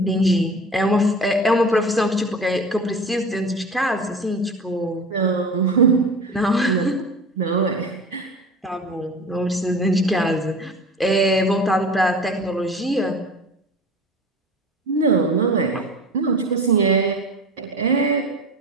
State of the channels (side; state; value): both; normal; correlation 0.36